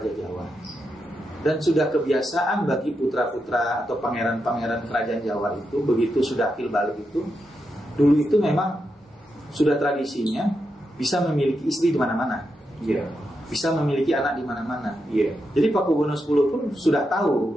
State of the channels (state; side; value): normal; both; correlation 0.85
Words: Jawa, dan sudah kebiasaan bagi putra-putra atau pangeran-pangeran kerajaan Jawa itu, begitu sudah akil balik itu, dulu itu memang sudah tradisinya bisa memiliki istri di mana-mana. Iya. Bisa memiliki anak di mana-mana. Iya. Jadi Pakubuwono X pun sudah tahu